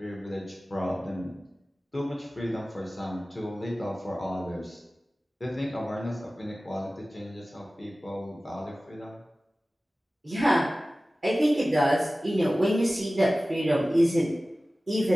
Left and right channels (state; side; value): normal; both; correlation 0.97